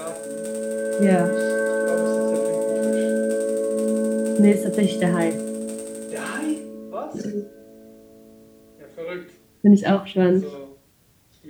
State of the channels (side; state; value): both; identical; correlation 1.00